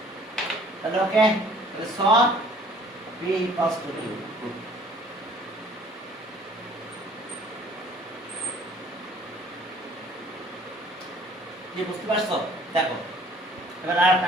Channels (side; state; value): both; normal; correlation 0.55